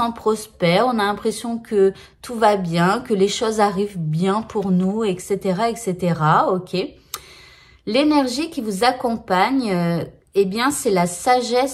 prospère, on a l'impression que tout va bien, que les choses arrivent bien pour nous, etc., etc. Ok. L'énergie qui vous accompagne, eh bien, c'est la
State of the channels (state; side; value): identical; both; correlation 1.00